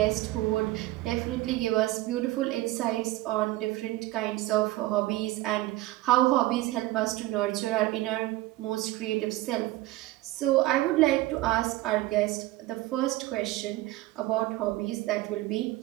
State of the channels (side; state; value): left; quieter; 17.7 dB